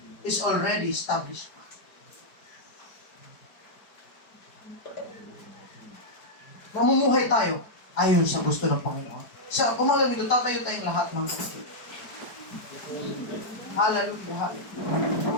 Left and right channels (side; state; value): right; late; 4.8 ms